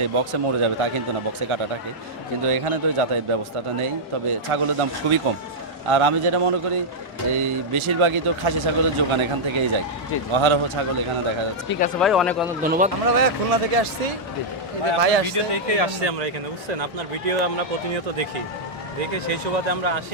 বক্সে মরে যাবে তা কিন্তু না, বক্সে কাটা থাকে। কিন্তু এখানে তো যাতায়াত ব্যবস্থাটা নেই, তবে ছাগলের দাম খুবই কম। আর আমি যেটা মনে করি এই বেশিরভাগই তো খাসি ছাগলের যোগান এখান থেকেই যায়, অহারহ ছাগল এখানে দেখা যাচ্ছে। ঠিক আছে ভাই, অনেক অনেক ধন্যবাদ। আমরা ভাইয়া খুলনা থেকে আসছি, এই যে ভাই আসছে। দেখে আসছি আমরা এখানে, বুঝছেন? আপনার ভিডিও আমরা প্রতিনিয়ত দেখে সেই সুবাদে আমরা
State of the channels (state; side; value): normal; both; correlation -0.07